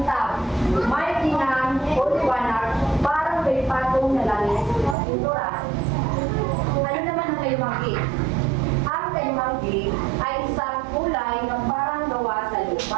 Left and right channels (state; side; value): drops out; left; at 5.0 s